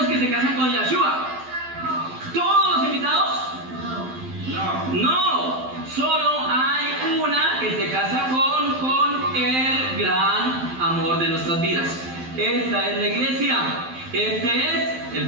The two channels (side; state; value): left; late; 12 ms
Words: que se casan con Yeshua? ¿Todos los invitados? No. Solo hay una que se casa con el gran de nuestras vidas. Esta es la iglesia. Este es